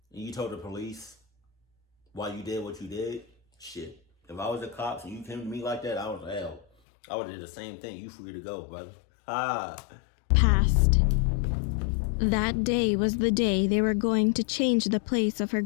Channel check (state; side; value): drops out; right; at 6.7 s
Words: And you told the police why you did what you did. Shit. If I was the cops and you came to me like that, I was hell. I would have did the same thing. You free to go, brother. Passed. That day was the day they were going to change the place of her